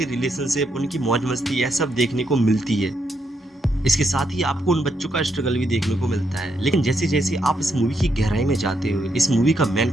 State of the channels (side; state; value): both; normal; correlation 0.78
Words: रिलेशनशिप, उनकी मौज मस्ती यह सब देखने को मिलती है। इसके साथ ही आपको उन बच्चों का स्ट्रगल भी देखने को मिलता है। लेकिन जैसे जैसे आप इस मूवी की गहराई में जाते हो, इस मूवी का